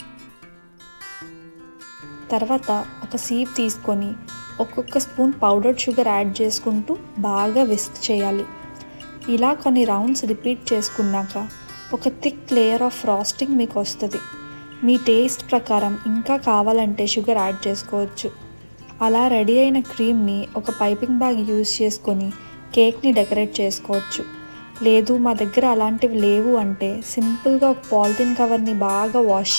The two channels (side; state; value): both; inverted; correlation -1.00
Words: తర్వాత ఒక సీప్ తీసుకొని ఒక్కొక్క స్పూన్ పౌడర్డ్ షుగర్ యాడ్ చేసుకుంటూ బాగా విస్క్ చేయాలి. ఇలా కొన్ని రౌండ్స్ రిపీట్ చేసుకున్నాక ఒక థిక్ లేయర్ ఆఫ్ ఫ్రాస్టింగ్ మీకు వస్తుంది. మీ టేస్ట్ ప్రకారం ఇంకా కావాలంటే షుగర్ యాడ్ చేసుకోవచ్చు. అలా రెడీ అయిన క్రీమ్ని ఒక పైపింగ్ బ్యాగ్ యూజ్ చేసుకొని కేక్ని డెకరేట్ చేసుకోవచ్చు. లేదు మా దగ్గర అలాంటివి లేవు అంటే సింపుల్గా ఒక పాలిథిన్ కవర్ని బాగా వాష్